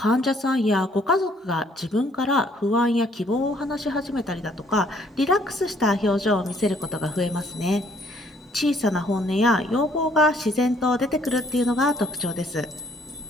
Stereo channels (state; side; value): normal; both; correlation 0.64